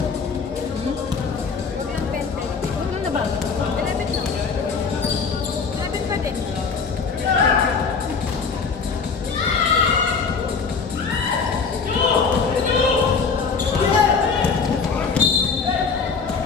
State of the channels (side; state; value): right; quieter; 5.3 dB